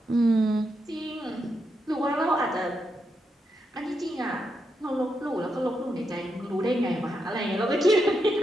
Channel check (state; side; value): normal; both; correlation 0.83